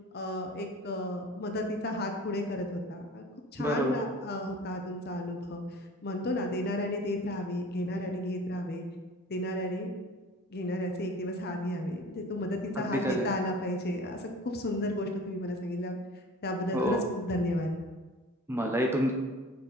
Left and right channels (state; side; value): normal; both; correlation 0.43